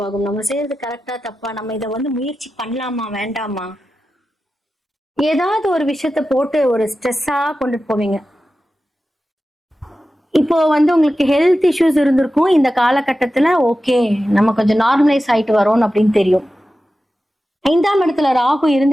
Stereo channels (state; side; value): normal; both; correlation 0.93